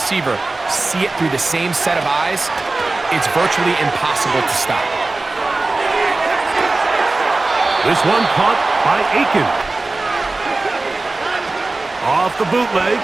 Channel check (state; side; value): quieter; left; 3.3 dB